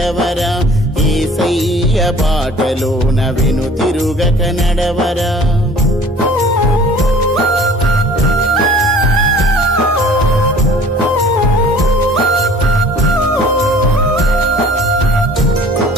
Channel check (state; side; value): normal; both; correlation 0.49